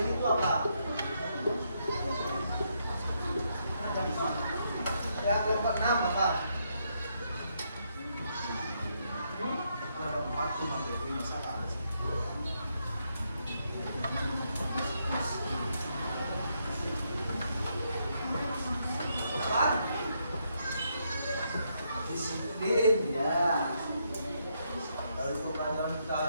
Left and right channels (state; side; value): inverted; both; correlation -0.77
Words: ini itu apa? Ya, kelompok 6 apa? Ada 4 tuh materi masalah. Apa? Disiplin, ya. Lalu pembelajaran kita